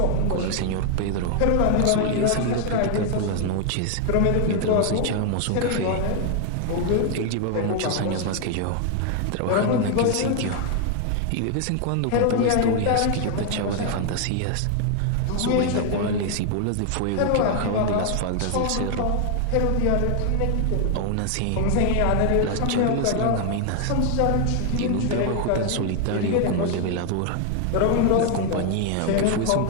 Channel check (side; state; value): both; different; correlation 0.00